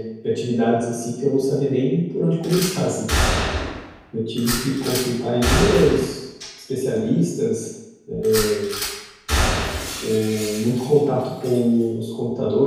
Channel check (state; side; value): identical; both; correlation 1.00